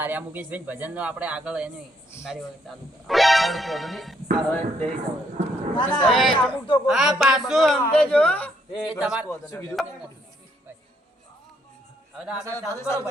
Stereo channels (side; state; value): both; normal; correlation 0.72